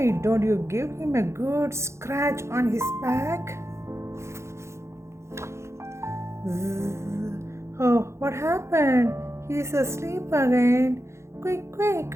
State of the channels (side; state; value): left; late; 0.13 ms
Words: don't you give him a good scratch on his back? Oh, what happened? He's asleep again.